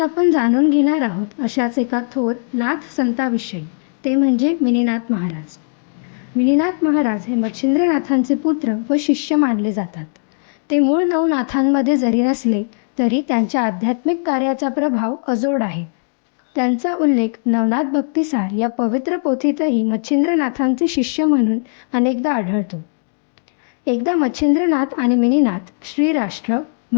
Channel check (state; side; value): silent; right; digital silence